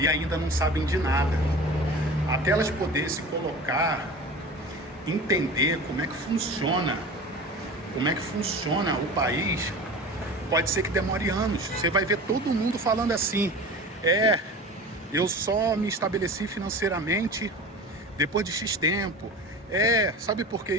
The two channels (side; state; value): both; normal; correlation 0.35